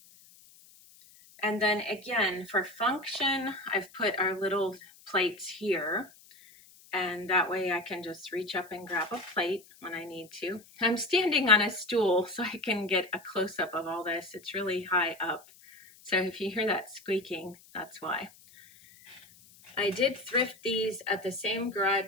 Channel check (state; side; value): noise; left; hiss, 24 dB below the sound